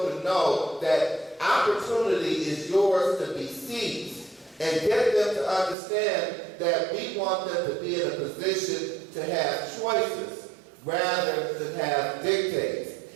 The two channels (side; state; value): left; drops out; at 5.8 s